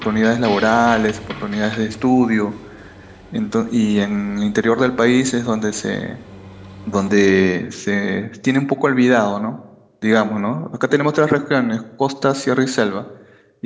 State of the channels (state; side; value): identical; both; correlation 1.00